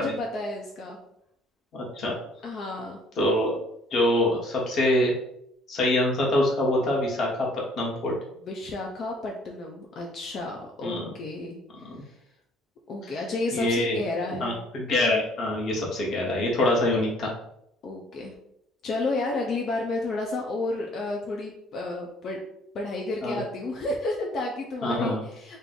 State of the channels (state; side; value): normal; both; correlation 0.59